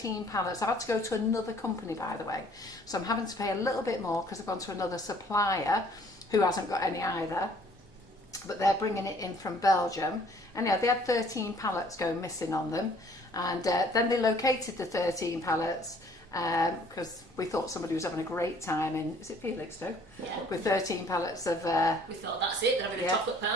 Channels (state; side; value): normal; both; correlation 0.58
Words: pallets. I've had to go to another company, by the way. So I'm having to pay a little bit more because I've gone to another supplier who hasn't got any either. But they're bringing it in from Belgium. And yeah, they had 13 pallets going missing on them. And then they located the 13 pallets because we thought somebody was having a great time in, is it Felixstowe? Yeah. With 13 pallets of... we thought, that's it, they're having a chocolate